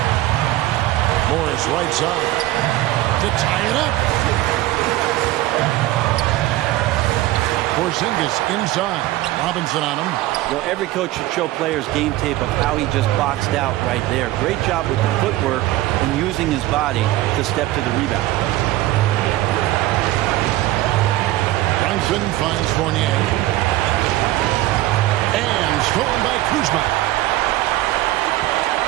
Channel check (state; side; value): quieter; left; 16.3 dB